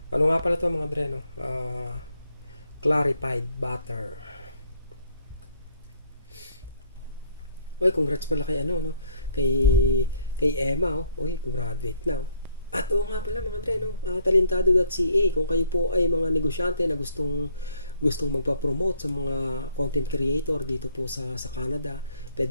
Ano nga pala to mga dreno? Clarified butter. Oy, congrats pala kay ano, no? Kay Emma, oh. Oy, graduate na, oh. At oo nga pala mga dreno, talentado.ca, kung kayo po ay mga negosyante na gustong gustong magpa-promote sa mga content creator dito po sa Canada,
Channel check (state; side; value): inverted; both; correlation -0.66